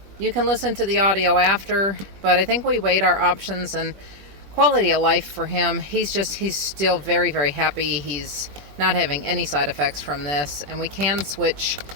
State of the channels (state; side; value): late; left; 21 ms